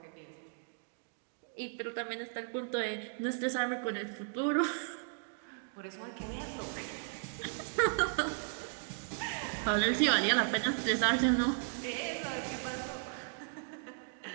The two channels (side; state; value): left; silent; digital silence